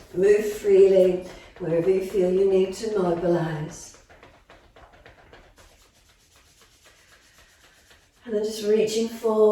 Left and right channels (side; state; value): both; identical; correlation 1.00